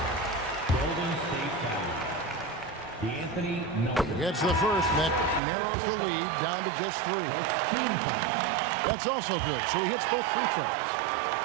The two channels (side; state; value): left; drops out; at 5.4 s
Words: Golden State foul. D'Anthony Melton. Gets the first, and that narrows the lead down to just 3. That's also good, so he hits both free throws.